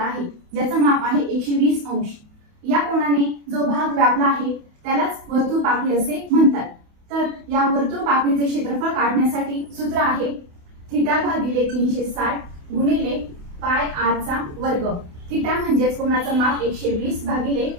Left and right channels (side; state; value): left; late; 28 ms